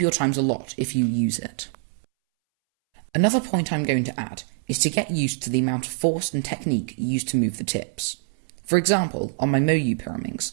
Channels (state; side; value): silent; left; 62 dB below the other